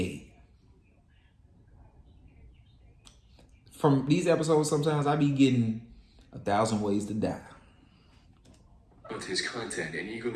From these episodes, sometimes I be getting 1,000 ways to die. With his content and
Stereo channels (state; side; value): identical; both; correlation 1.00